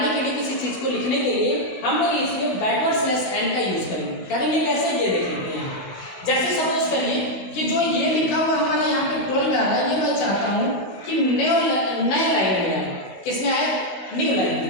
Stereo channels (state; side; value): late; right; 16 ms